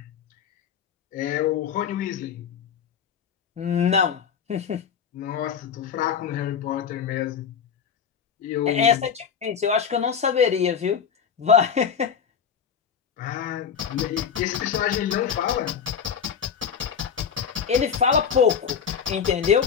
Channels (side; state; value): right; quieter; 7.2 dB